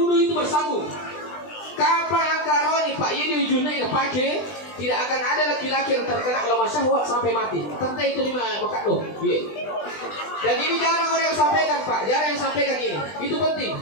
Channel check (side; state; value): right; late; 20 ms